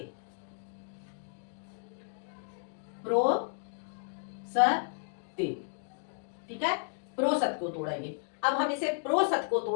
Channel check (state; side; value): silent; right; digital silence